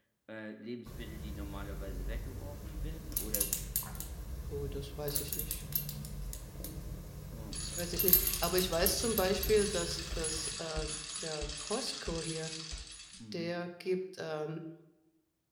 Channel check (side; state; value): both; identical; correlation 1.00